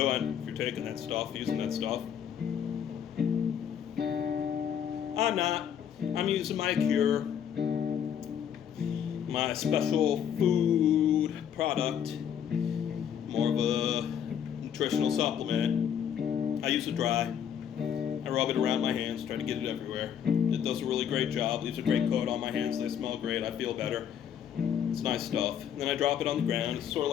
if you're taking that stuff, using that stuff. I'm not. I'm using my cure, my special food product, more of a nutritional supplement. I use it dry. I rub it around my hands, try to get it everywhere. It does a really great job, leaves a great coat on my hands, they smell great, I feel better. It's nice stuff. And then I drop it on the ground. It's sort of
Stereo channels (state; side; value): quieter; right; 8.9 dB